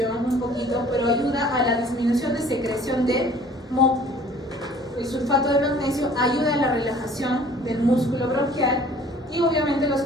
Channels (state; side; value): normal; both; correlation 0.52